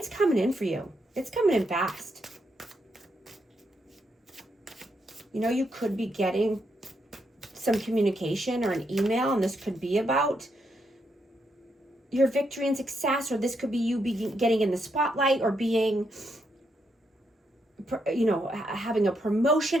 coming in for you. It's coming in fast. You could be getting some communication or an email, and this could be about your victory and success, or this could be you getting in the spotlight, or being, having a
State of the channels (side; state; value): both; normal; correlation 0.79